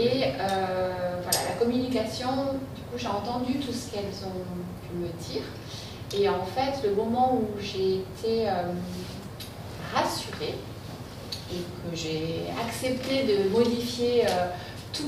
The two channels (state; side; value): identical; both; correlation 1.00